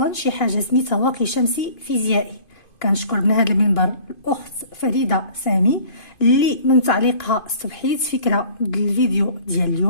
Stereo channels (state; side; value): late; right; 2.5 ms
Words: شي حاجه سميتها واقي شمسي فيزيائي. كنشكر من هذا المنبر الاخت فريده سامي اللي من تعليقها استوحيت فكره الفيديو ديال